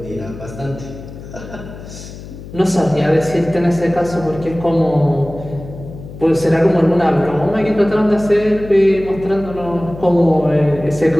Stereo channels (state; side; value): noise; left; hum, 14 dB below the sound